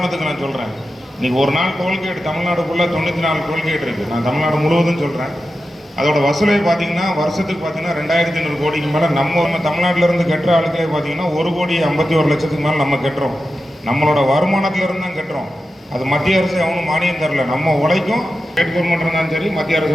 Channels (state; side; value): normal; both; correlation 0.91